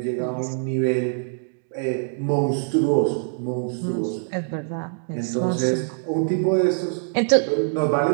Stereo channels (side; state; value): left; silent; digital silence